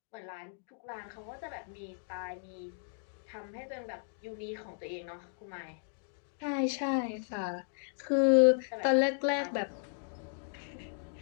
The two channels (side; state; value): right; silent; digital silence